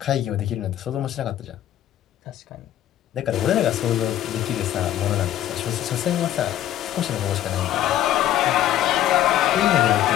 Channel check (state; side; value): quieter; right; 12.2 dB